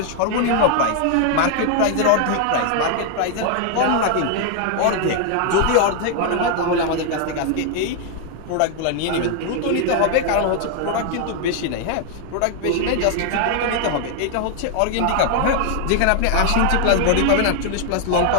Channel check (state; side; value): different; both; correlation 0.00